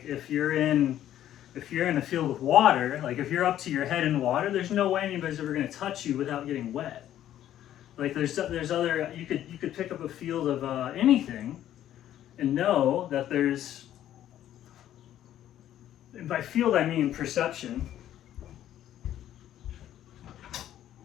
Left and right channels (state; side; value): quieter; right; 11.8 dB